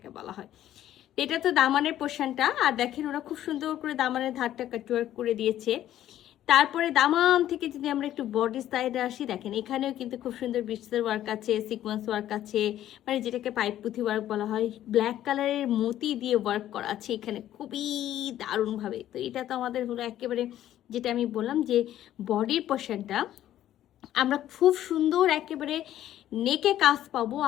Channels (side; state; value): right; quieter; 12.3 dB